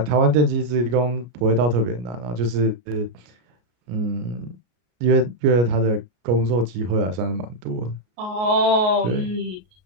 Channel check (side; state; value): left; late; 33 ms